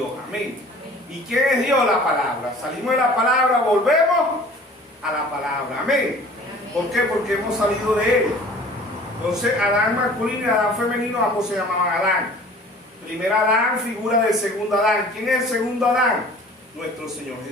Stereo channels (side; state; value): both; normal; correlation 0.47